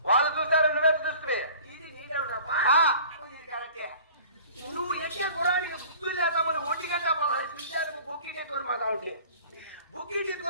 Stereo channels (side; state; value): both; inverted; correlation -0.47